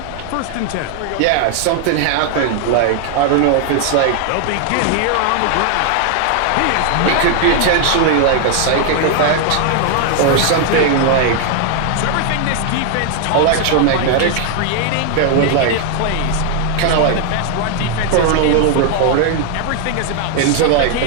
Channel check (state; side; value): different; both; correlation 0.00